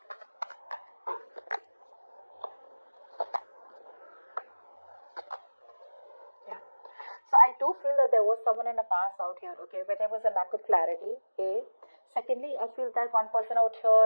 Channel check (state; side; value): inverted; both; correlation -1.00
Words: Yeah. So I do feel that there was someone in the past out here, okay, where there was a lack of clarity, A. Secondly, I feel that one person out